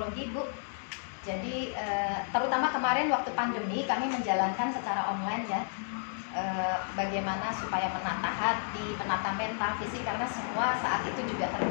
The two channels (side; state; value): right; silent; digital silence